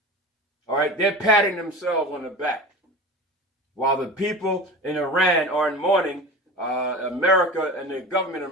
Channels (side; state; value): both; normal; correlation 0.32